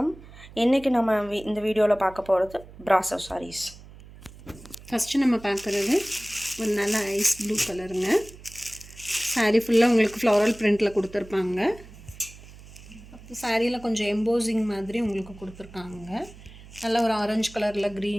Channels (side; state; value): right; noise; hum, 19 dB below the sound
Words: இன்றைக்கி நம்ம இந்த வீடியோவில் பார்க்க போகிறது பிராசோ சாரீஸ். ஃபஸ்ட்டு நம்ம பார்க்குறது ஒரு நல்ல ஐஸ் ப்ளூ கலருங்க. சாரீ ஃபுல்லாக உங்களுக்கு ஃப்ளாரல் பிரிண்டில் கொடுத்துருப்பாங்க. சாரியில் கொஞ்சம் எம்போசிங் மாதிரி உங்களுக்கு கொடுத்துருக்காங்க. நல்ல ஒரு ஆரஞ்சு கலரில்